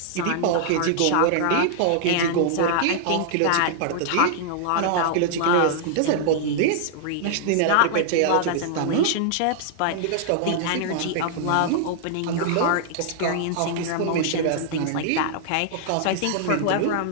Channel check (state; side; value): different; both; correlation -0.01